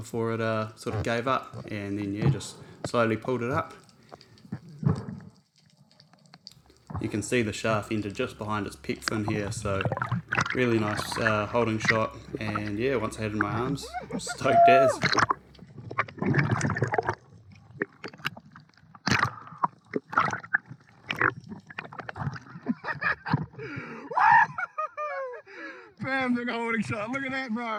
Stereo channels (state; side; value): identical; both; correlation 1.00